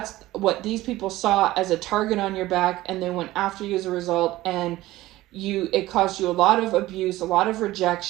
what these people saw as a target on your back, and they went after you as a result, and it caused you a lot of abuse, a lot of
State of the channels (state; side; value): quieter; left; 16.9 dB